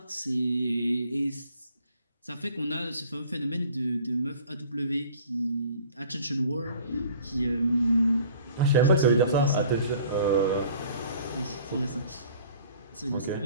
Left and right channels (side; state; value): both; inverted; correlation -0.51